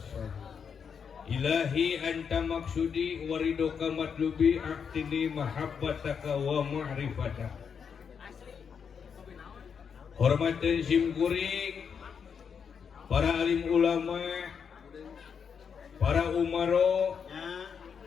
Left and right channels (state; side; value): quieter; right; 6.7 dB